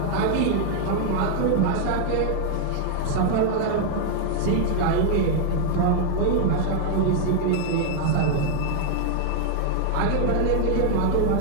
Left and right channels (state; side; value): different; both; correlation 0.00